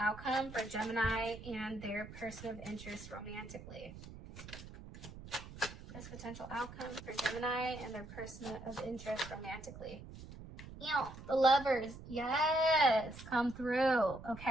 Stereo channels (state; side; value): noise; right; rumble, 14 dB below the sound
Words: for Gemini and their person of interest romantically? Best potential outcome for Gemini and their person of interest romantically. You know, the Lovers, yes, come through.